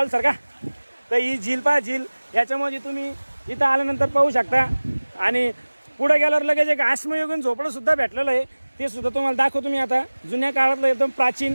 सर का, तर ही झील पहा झील. याच्यामध्ये तुम्ही इथं आल्यानंतर पाहू शकता. आणि पुढे गेल्यावर लगेच एक आश्मयुगीन झोपडं सुद्धा भेटलेलं आहे. ते सुद्धा तुम्हाला दाखवतो मी आता. जुन्या काळातलं एकदम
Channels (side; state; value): both; inverted; correlation -1.00